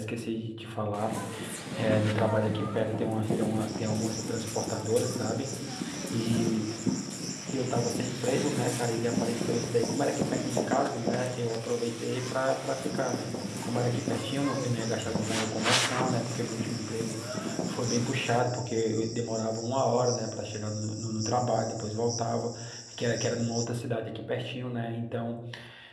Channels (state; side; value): identical; both; correlation 1.00